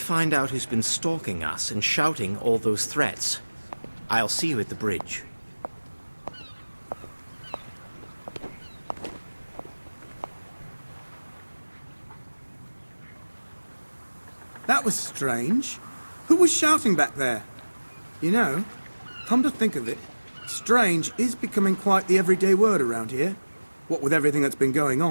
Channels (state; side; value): inverted; both; correlation -1.00